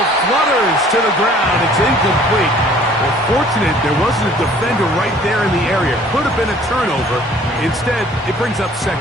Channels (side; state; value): both; normal; correlation 0.54